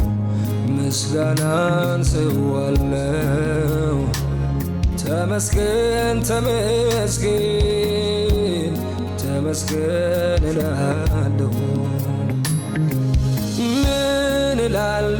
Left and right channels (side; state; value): both; identical; correlation 1.00